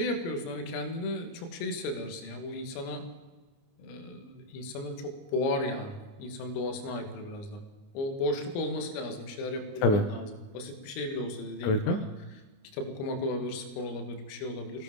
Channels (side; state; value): right; late; 29 ms